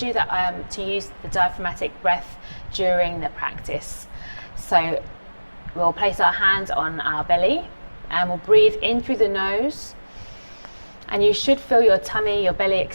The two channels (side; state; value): both; inverted; correlation -1.00